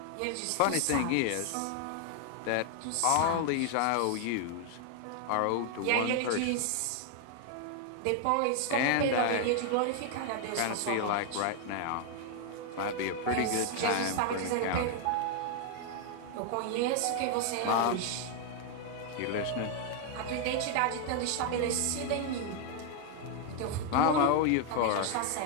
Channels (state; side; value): different; both; correlation 0.00